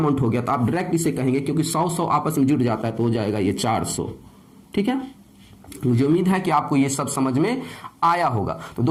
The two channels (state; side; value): identical; both; correlation 1.00